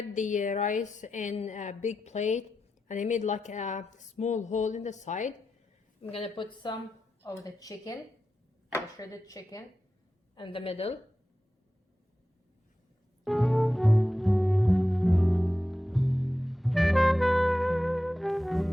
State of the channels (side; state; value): both; normal; correlation 0.91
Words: the rice in a big plate and I made like a small hole in the side. I'm gonna put some of the chicken, the shredded chicken, in the middle.